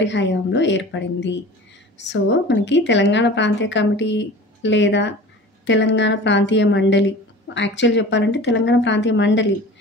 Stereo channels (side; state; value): both; normal; correlation 0.39